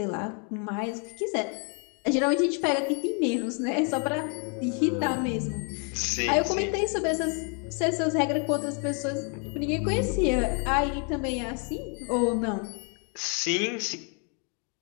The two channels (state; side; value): quieter; right; 38.1 dB